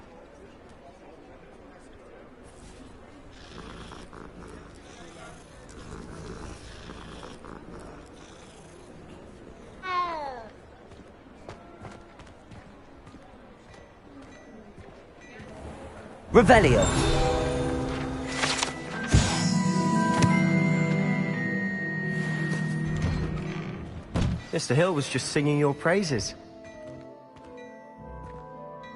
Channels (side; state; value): both; identical; correlation 1.00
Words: Revelio! Mr. Hill was just singing your praises.